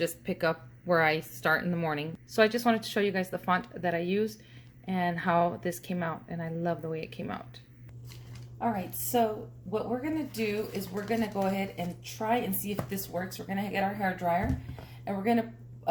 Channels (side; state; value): both; identical; correlation 1.00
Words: pick up where I start in the morning. So I just wanted to show you guys the font that I used and how this came out, and I love the way it came out. All right, so what we're gonna do is we're gonna go ahead and try and see if this works. We're gonna get our hair dryer, and we're gonna